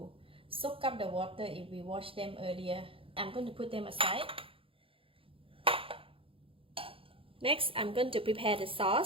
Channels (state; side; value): late; left; 0.26 ms